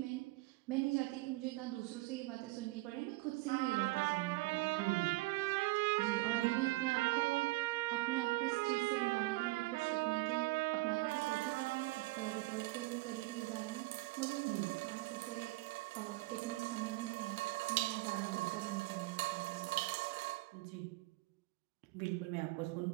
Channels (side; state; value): left; quieter; 21.2 dB